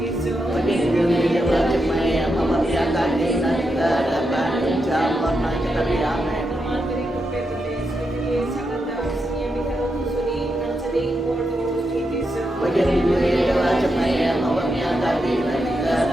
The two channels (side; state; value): both; normal; correlation 0.84